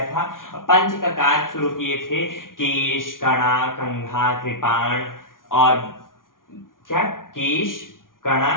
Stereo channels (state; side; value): late; right; 0.89 ms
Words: था। पंच ककार शुरू किए थे, केश, कणा, कंघा, कृपाण और क्या, केश, कणा,